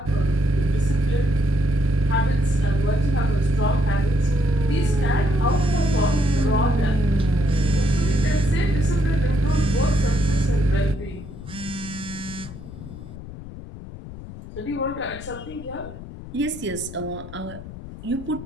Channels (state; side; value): noise; left; rumble, 13 dB below the sound